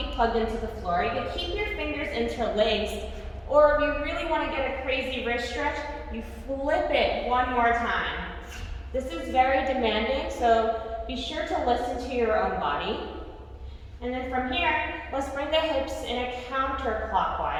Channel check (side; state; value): both; identical; correlation 1.00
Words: plugged into the floor. You can keep your fingers interlaced, or if you really want to get a crazy wrist stretch, you flip it one more time. This is very demanding, so be sure to listen to your own body. And then from here, let's bring the hips in a